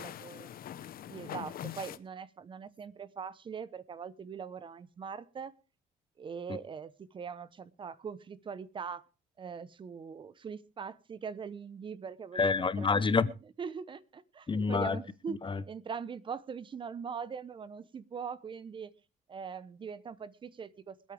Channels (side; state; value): both; normal; correlation 0.42